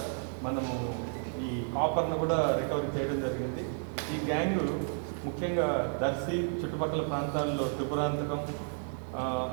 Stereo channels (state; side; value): silent; left; 56 dB below the other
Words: మనము ఈ కాపర్ను కూడా రికవరీ చేయడం జరిగింది. ఈ గ్యాంగు ముఖ్యంగా దర్శి చుట్టుపక్కల ప్రాంతాల్లో త్రిపురాంతకం,